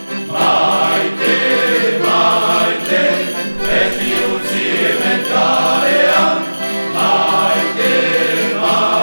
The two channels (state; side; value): inverted; both; correlation -1.00